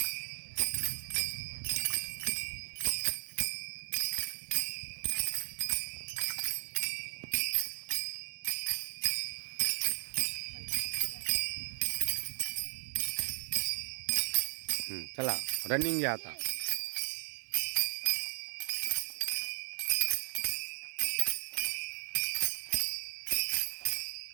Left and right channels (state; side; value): silent; left; digital silence